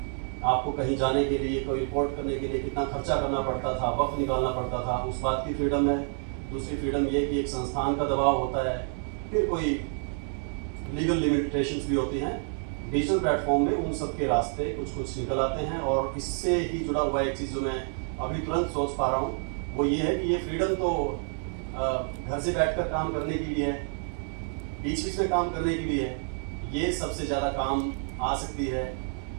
आपको कहीं जाने के लिए, कोई रिपोर्ट करने के लिए कितना खर्चा करना पड़ता था, वक्त निकालना पड़ता था, उस बात की फ्रीडम है। दूसरी फ्रीडम ये कि एक संस्थान का दबाव होता है, फिर कोई लीगल लिमिटेशंस भी होती हैं। डिजिटल प्लेटफॉर्म में उन सब के रास्ते कुछ कुछ निकल आते हैं। और इससे ही जुड़ा हुआ एक चीज़ जो मैं अभी तुरंत सोच पा रहा हूँ वो ये है कि ये फ्रीडम तो घर से बैठकर काम करने की भी है, बीच बीच में काम करने की भी है। ये सबसे ज़्यादा काम आ सकती है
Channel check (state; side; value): silent; left; 56 dB below the other